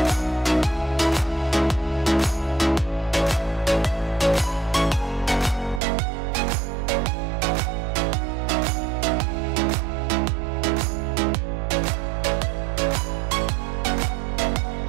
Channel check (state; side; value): drops out; left; at 5.8 s